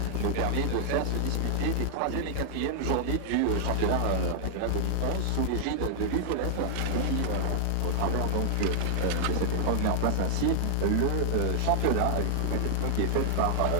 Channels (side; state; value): both; different; correlation 0.00